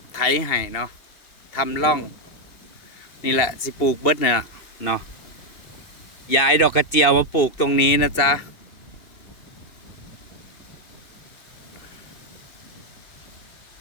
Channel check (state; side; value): late; right; 2.4 ms